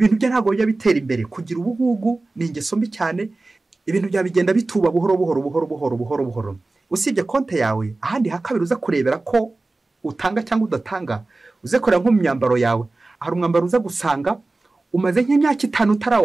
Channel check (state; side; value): quieter; left; 3.2 dB